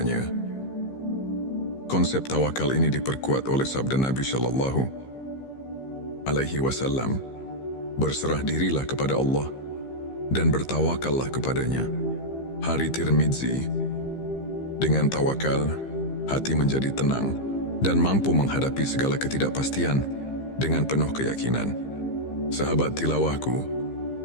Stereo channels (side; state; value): right; late; 15 ms